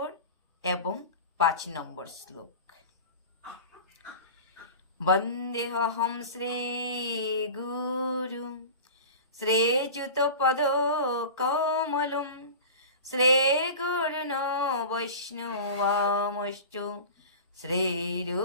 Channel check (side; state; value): both; inverted; correlation -0.35